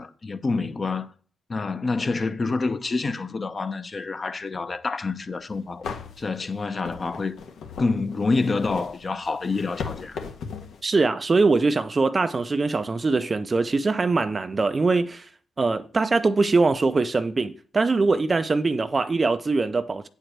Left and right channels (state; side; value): normal; both; correlation 0.92